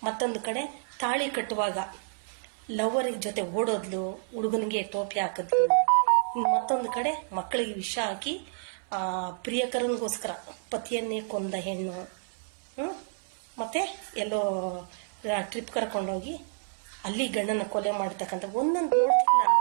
ಮತ್ತೊಂದು ಕಡೆ ತಾಳಿ ಕಟ್ಟುವಾಗ ಲವರಿಗೆ ಜೊತೆ ಓಡೋದ್ಲು, ಹುಡುಗನಿಗೆ ಟೋಪಿ ಹಾಕಿದ್ಲು, ಮತ್ತೊಂದು ಕಡೆ ಮಕ್ಕಳಿಗೆ ವಿಷ ಹಾಕಿ ಪ್ರಿಯಕರನಿಗೋಸ್ಕರ ಪತಿಯನ್ನೇ ಕೊಂದ ಹೆಣ್ಣು. ಮತ್ತೆ ಎಲ್ಲೋ ಟ್ರಿಪ್ ಕರ್ಕೊಂಡೋಗಿ ಅಲ್ಲಿ ಗಂಡನ ಕೊಲೆ ಮಾಡತಕ್ಕಂಥ ಒಂದೊಂದು ನೋಡ್ತಿಲ್ಲ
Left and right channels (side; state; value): left; silent; 58 dB below the other